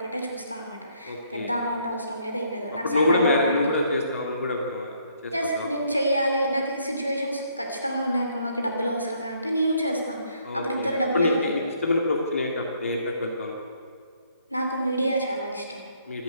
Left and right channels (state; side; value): inverted; both; correlation -0.68